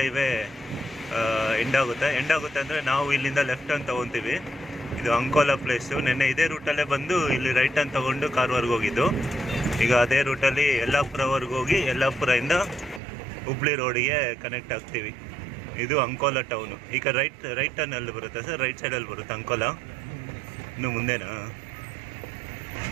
ಹೈವೇ ಎಂಡ್ ಆಗುತ್ತೆ ಅಂದರೆ ನಾವು ಇಲ್ಲಿಂದ ಲೆಫ್ಟ್ ಟರ್ನ್ ತೊಗೊತೀವಿ. ಇದು ಅಂಕೋಲಾ ಪ್ಲೇಸು. ನೆನ್ನೆ ಇದೇ ರೂಟಲ್ಲೇ ಬಂದು ಇಲ್ಲಿ ರೈಟ್ ಟರ್ನ್ ತೊಗೊಂಡು ಕಾರವಾರ್ಗೆ ಹೋಗಿದ್ದು. ಈಗ ಅದೇ ರೂಟಲ್ಲಿ ಯಲ್ಲಾಪುರವರೆಗೆ ಹೋಗಿ ಯಲ್ಲಾಪುರದಿಂದ ಹುಬ್ಳಿ ರೋಡಿಗೆ ಕನೆಕ್ಟ್ ಆಗ್ತೀವಿ. ಇದು ಅಂಕೋಲಾ ಟೌನು. ಈಗ ರೈಟ್ ಟರ್ನಲ್ಲಿ ಬರುತ್ತೆ ಸರ್, ರೈಟ್ ಸೈಡಲ್ಲಿ ಬರುತ್ತೆ ಅಂಕೋಲಾ. ಇನ್ನು ಮುಂದೆನಾ?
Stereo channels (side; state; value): left; drops out; at 13.0 s